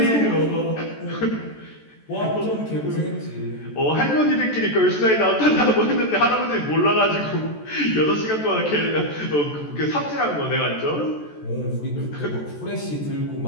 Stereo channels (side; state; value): right; late; 14 ms